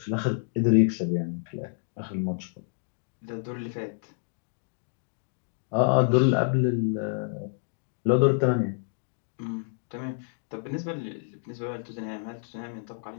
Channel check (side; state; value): right; silent; digital silence